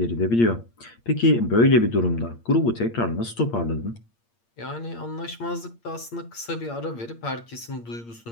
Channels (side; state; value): right; late; 8.6 ms